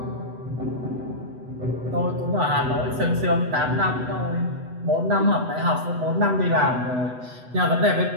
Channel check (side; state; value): left; late; 8.0 ms